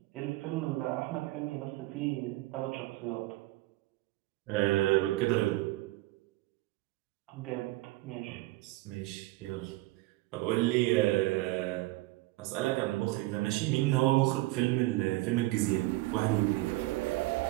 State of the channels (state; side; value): quieter; left; 19.3 dB